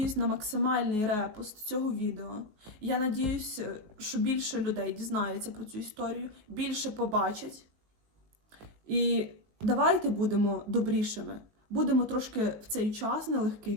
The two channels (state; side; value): late; left; 19 ms